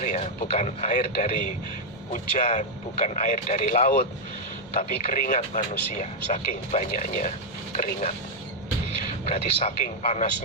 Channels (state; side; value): normal; both; correlation -0.01